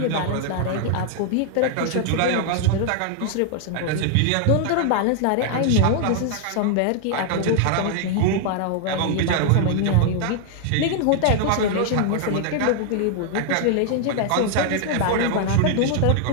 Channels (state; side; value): different; both; correlation 0.00